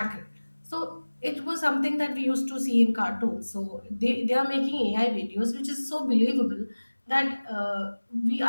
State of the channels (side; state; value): both; inverted; correlation -1.00